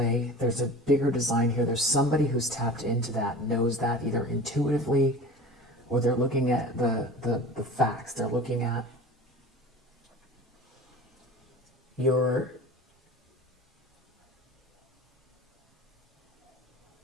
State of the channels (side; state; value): both; normal; correlation 0.37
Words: There's a bigger design here. There's somebody who's tapped into that, knows that either intuitively, or they're looking at the facts. They're looking at you